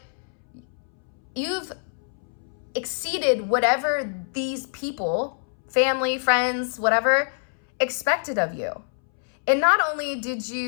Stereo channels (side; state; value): right; silent; 61 dB below the other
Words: you've exceeded whatever these people, family, friends, whatever, expected of you. And not only did